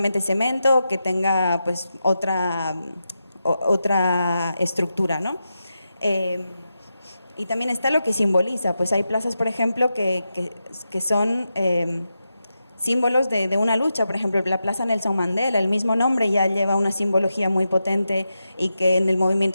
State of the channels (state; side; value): inverted; both; correlation -0.89